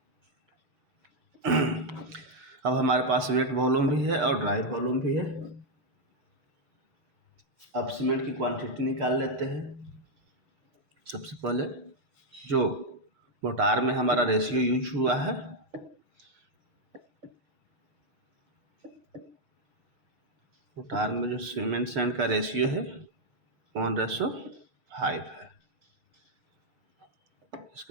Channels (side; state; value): left; late; 6.7 ms